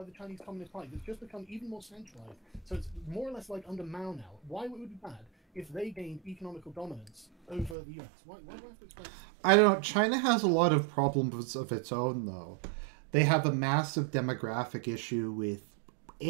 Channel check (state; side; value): drops out; left; at 7.8 s